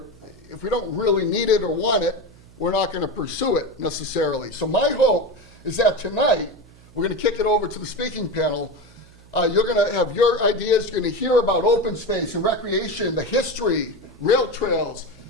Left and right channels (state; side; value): noise; right; hum, 24 dB below the sound